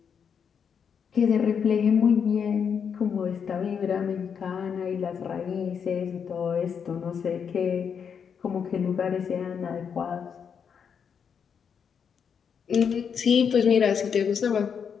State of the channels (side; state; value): right; quieter; 7.0 dB